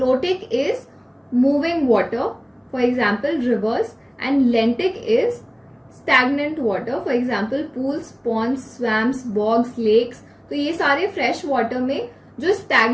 is moving water, for example reverse, and lentic is stagnant water, for example pools, ponds, swamps, bogs, lakes. तो ये सारे fresh water में जो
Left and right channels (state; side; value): identical; both; correlation 1.00